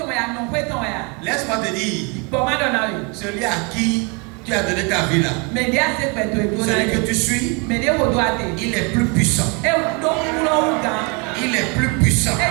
laisse-moi te dire, celui à qui tu as donné ta vie là, celui que tu suis, il est plus puissant. Il est plus puissant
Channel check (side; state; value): left; quieter; 32.1 dB